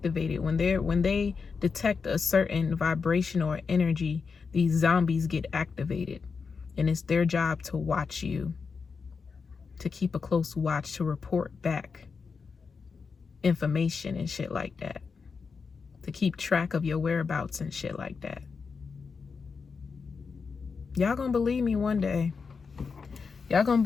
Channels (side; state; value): right; quieter; 5.2 dB